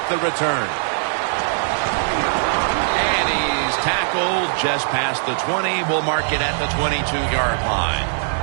the return. And he's tackled just past the 20. We'll mark it at the 22-yard line.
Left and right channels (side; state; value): left; silent; digital silence